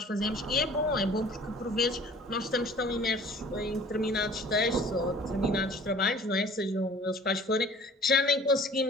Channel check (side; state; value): both; normal; correlation 0.49